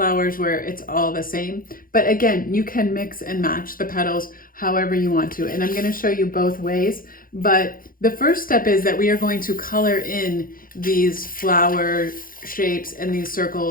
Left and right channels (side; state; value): right; late; 0.41 ms